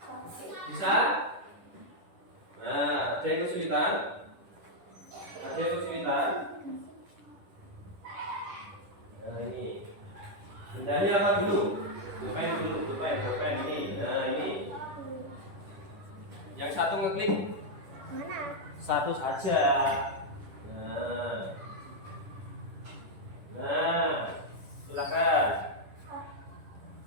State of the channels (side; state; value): left; late; 10 ms